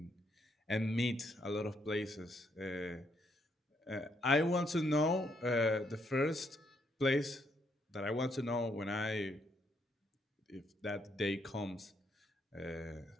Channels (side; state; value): both; normal; correlation 0.74